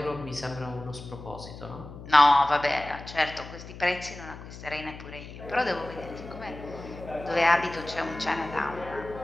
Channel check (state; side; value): noise; left; hum, 14 dB below the sound